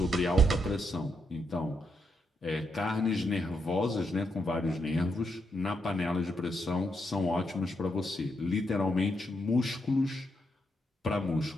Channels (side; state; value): both; normal; correlation 0.80